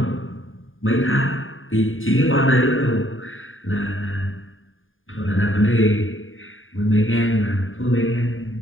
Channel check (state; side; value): late; right; 0.59 ms